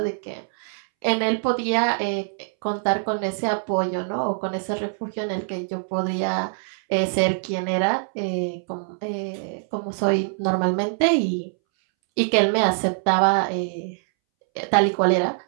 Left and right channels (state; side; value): silent; left; 63 dB below the other